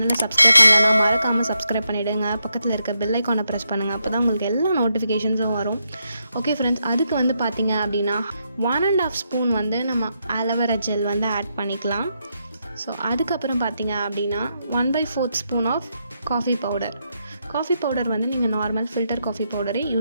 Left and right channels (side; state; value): both; inverted; correlation -0.81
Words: சப்ஸ்கிரைப் பண்ணலன்னா மறக்காமல் சப்ஸ்கிரைப் பண்ணிவிடுங்க. பக்கத்தில் இருக்க பெல் ஐக்கானை ப்ரெஸ் பண்ணுங்கள். அப்போ தான் உங்களுக்கு எல்லா நோட்டிஃபிகேஷன்ஸும் வரும். ஓகே ஃப்ரெண்ட்ஸ், அதுக்கு பார்த்தீங்க அப்படின்னா 1.5 ஸ்பூன் நம்ம ஆலோவேரா ஜெல் ஆட் பண்ணிக்கலாம். ஸோ அதுக்கப்புறம் பார்த்தீங்க அப்படின்னா 1/4 ஸ்பூன் ஆஃப் காஃபி பவுடர் நீங்கள் நார்மல் ஃபில்டர் காஃபி பவுடரே